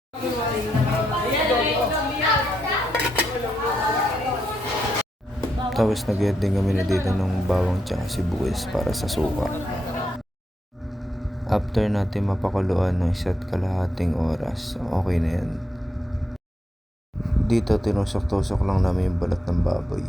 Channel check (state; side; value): normal; both; correlation 0.81